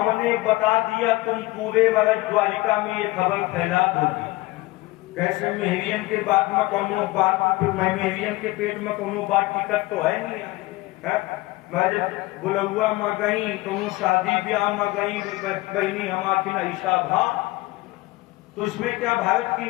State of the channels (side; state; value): right; quieter; 20.4 dB